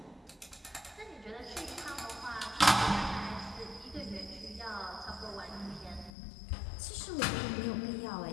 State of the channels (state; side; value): drops out; right; at 6.1 s